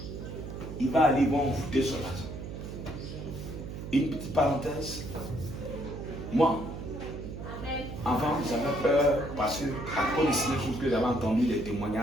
il va aller envoûter son argent. Une petite parenthèse. Moi, avant, j'avais peur parce que, à cause de ces choses que j'avais entendu, les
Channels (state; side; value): noise; right; hum, 9 dB below the sound